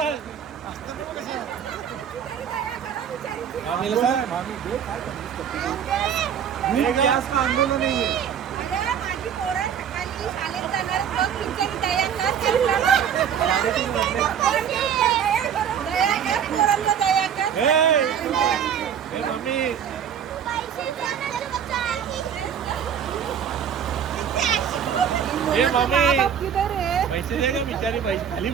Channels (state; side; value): quieter; left; 8.4 dB